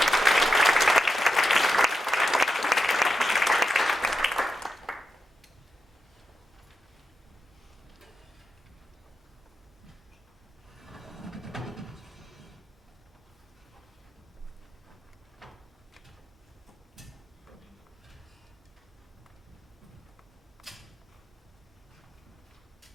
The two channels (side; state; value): both; normal; correlation 0.88